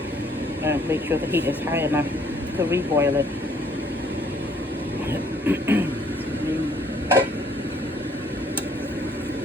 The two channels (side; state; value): both; normal; correlation 0.63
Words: make sure the heat is high enough to reboil it.